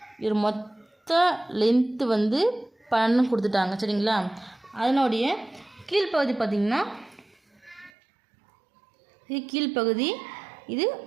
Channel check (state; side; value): drops out; left; at 7.9 s